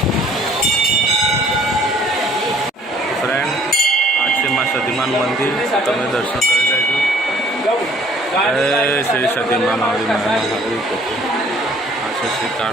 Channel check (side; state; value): both; normal; correlation 0.57